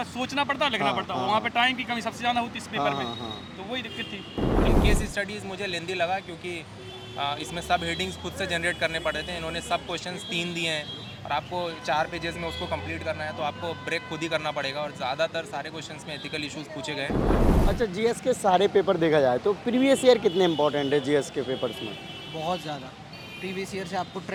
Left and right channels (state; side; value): identical; both; correlation 1.00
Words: सोचना पड़ता है, लिखना हाँ, पड़ता है, हाँ, वहाँ पे टाइम की कमी सबसे ज़्यादा होती है इस पेपर हाँ, में, हाँ। तो वही दिक्कत थी। केस स्टडीज़ मुझे लेंदी लगा क्योंकि इसमें सब हेडिंग्स खुद से जनरेट करने पड़े थे। इन्होंने सब क्वेश्चंस 3 दिए हैं और आपको 4 पेजेस में उसको कंप्लीट करना है, तो आपको ब्रेक खुद ही करना पड़ेगा और ज़्यादातर सारे क्वेश्चंस में एथिकल इश्यूज पूछे गए। अच्छा, जीएस के सारे पेपर देखा जाए तो प्रीवियस ईयर कितने इंपॉर्टेंट है जीएस के पेपर्स में? बहुत ज़्यादा। प्रीवियस ईयर से आपको